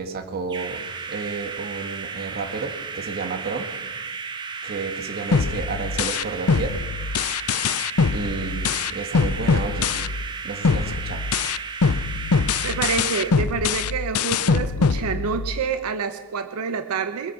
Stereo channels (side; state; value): both; normal; correlation 0.28